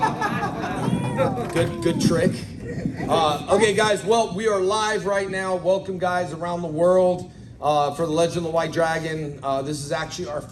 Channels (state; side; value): identical; both; correlation 1.00